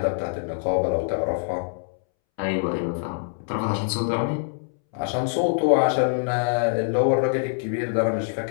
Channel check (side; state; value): right; silent; 62 dB below the other